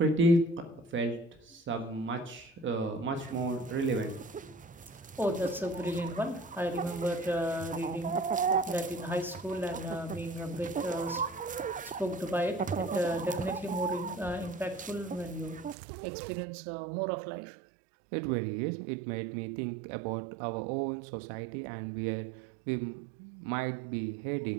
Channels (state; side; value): drops out; left; at 15.8 s